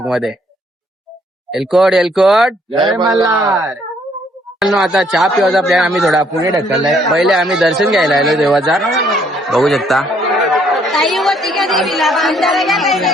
मध्ये. एलकोट एलकोट जय मल्हार. आता चहा पिवायचा प्लॅन आम्ही थोडा पुढे ढकललाय. पहिले आम्ही दर्शन घ्यायला आलो देवाचा. बघू शकता.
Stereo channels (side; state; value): both; normal; correlation 0.66